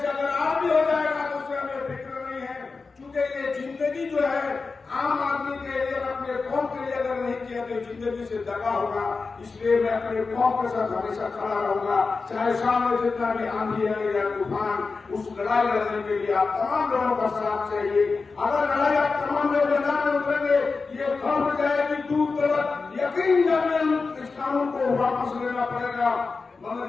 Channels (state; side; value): quieter; right; 4.3 dB